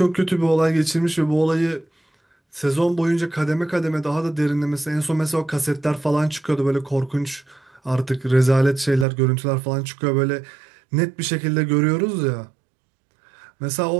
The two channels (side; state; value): left; drops out; at 9.1 s